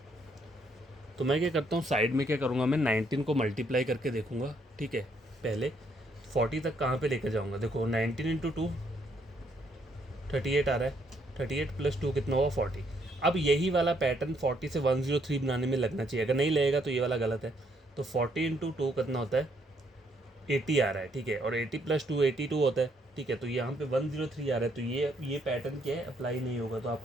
तो मैं क्या करता हूँ, साइड में क्या करूँगा, मैं 19 को मल्टीप्लाई करके देखूँगा, ठीक है, पहले 40 तक कहाँ पे लेकर जाऊँगा, देखो 19 इंटू 2 38 आ रहा है, 38 प्लस 2 कितना हुआ 40। अब यही वाला पैटर्न 40 से 103 बनाने में लगना चाहिए, अगर नहीं लगेगा तो ये वाला गलत है। तो 40 इंटू 2 कितना होता है, 80 आ रहा है, ठीक है, और 80 प्लस 2 82 होता है, ठीक है। तो यहाँ पे 103 आ रहा है, तो ये पैटर्न क्या है, अप्लाई नहीं होगा। तो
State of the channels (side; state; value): both; normal; correlation 0.71